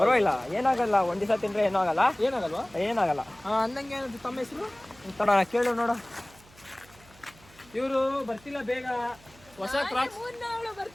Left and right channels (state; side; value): noise; right; hum, 25 dB below the sound